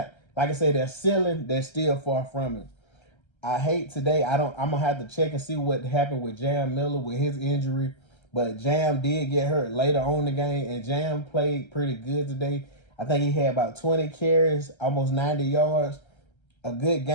like I say, they're ceiling, they're still far from it. I hate today, I'm going to have to check and see what happened with Jam Miller with his injury. But Jam did get hurt later on in the game, and Jam played pretty good today. I think he had about 20 carries, almost 90 yards. A good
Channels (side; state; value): right; late; 1.3 ms